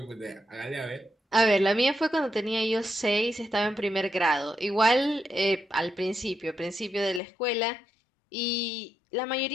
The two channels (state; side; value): drops out; right; at 7.2 s